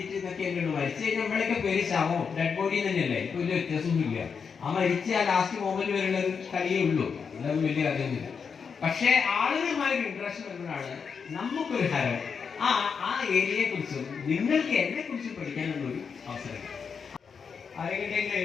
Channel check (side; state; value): right; quieter; 6.1 dB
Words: എന്നൊക്കെ ഉള്ളൂ. മരിച്ചു കഴിഞ്ഞാൽ നമ്മളൊക്കെ പേര് ശവോ ഡെഡ് ബോഡി തന്നെയല്ലേ. ഇപ്പൊ വലിയ വ്യത്യാസമൊന്നുമില്ല. ആ മരിച്ച ആ ലാസ്റ്റ് മൊമെന്റ് വരെയുള്ള ഒരു കളിയേ ഉള്ളൂ. അതൊന്നും വലിയ കഥയൊന്നുമില്ല. പക്ഷെ ആളുകളുമായൊരു ഇൻട്രസ്റ്റ് വരുമ്പോഴാണ് നമുക്കൊരു ഹരം ആ ഏരിയയെ കുറിച്ചും നിങ്ങൾക്ക് എന്നെ കുറിച്ചും പഠിക്കാനുള്ള ഒരു അവസരം. ആരെങ്കിലും